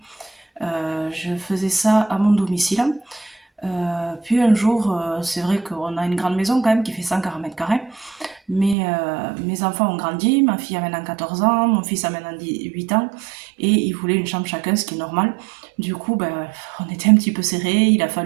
Je faisais ça à mon domicile. Puis un jour, c'est vrai qu'on a une grande maison quand même qui fait 140 mètres carrés. Mais mes enfants ont grandi, ma fille a maintenant 14 ans, mon fils a maintenant 8 ans, et ils voulaient une chambre chacun, ce qui est normal. Du coup, ben, on était un petit peu serrés, il a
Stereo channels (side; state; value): left; drops out; at 8.8 s